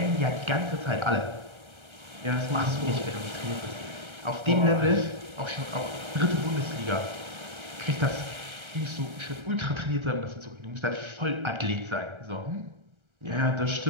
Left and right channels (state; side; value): late; left; 1.3 ms